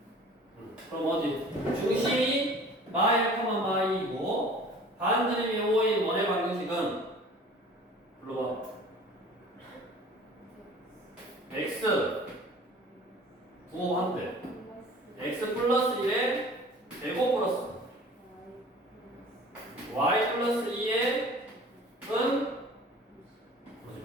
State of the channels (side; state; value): both; normal; correlation 0.46